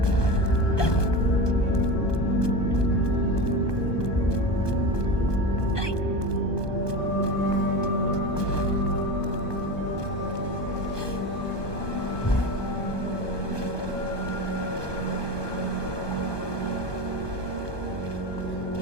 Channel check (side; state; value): right; late; 1.2 ms